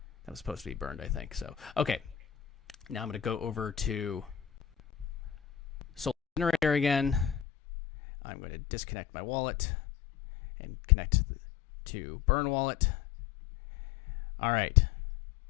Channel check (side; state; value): right; drops out; at 7.5 s